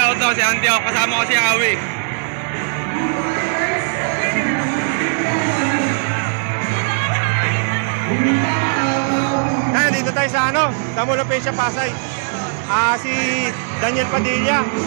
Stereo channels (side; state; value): left; silent; digital silence